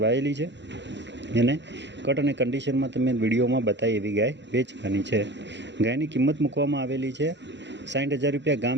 છે। એને કટ અને કન્ડિશનમાં તમે વિડીયોમાં બતાવી એવી ગાય વેચવાની છે। ગાયની કિંમત મૂકવામાં આવેલી છે 60,000 રૂપિયા।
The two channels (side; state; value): left; late; 0.52 ms